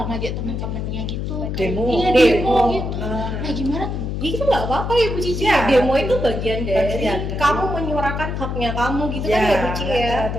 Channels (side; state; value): left; noise; hum, 3 dB below the sound